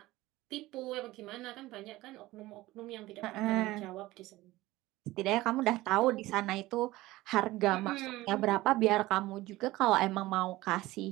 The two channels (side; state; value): left; quieter; 18.1 dB